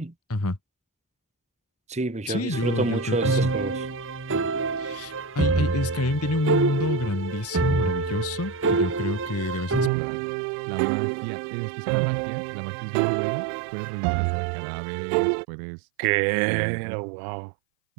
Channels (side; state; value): left; drops out; at 9.9 s